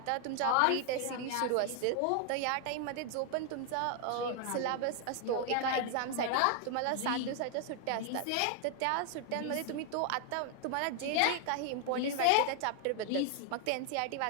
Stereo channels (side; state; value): both; different; correlation 0.00